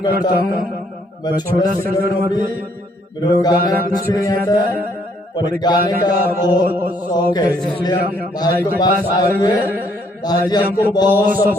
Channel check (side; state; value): both; normal; correlation 0.68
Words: करता हूँ। मैं छोटा सिंगर हूँ, अभी मेरे को गाना कुछ नहीं आता है, पर गाने का बहुत शौक है, इसलिए हम भाई के पास आए हुए। भाई जी हमको बहुत